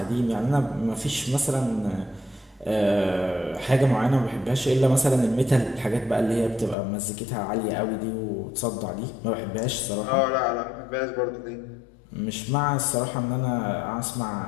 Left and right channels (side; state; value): right; drops out; at 6.8 s